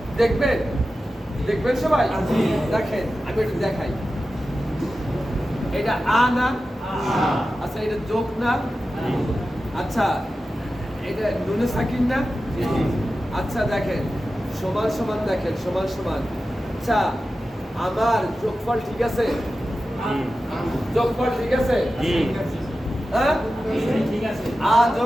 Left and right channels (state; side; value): normal; both; correlation 0.93